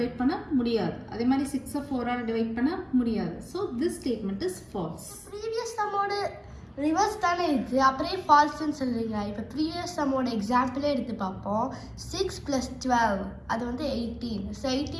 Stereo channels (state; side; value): identical; both; correlation 1.00